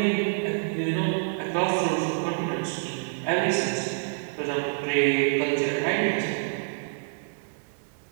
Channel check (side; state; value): left; silent; digital silence